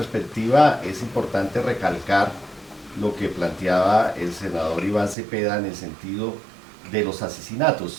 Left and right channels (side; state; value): left; drops out; at 5.2 s